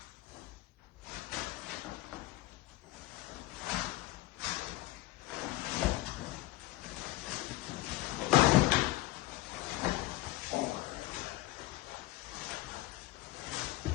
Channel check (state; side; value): quieter; right; 18.0 dB